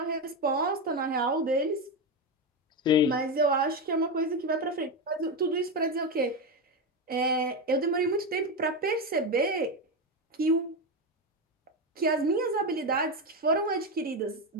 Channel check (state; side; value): normal; both; correlation 0.13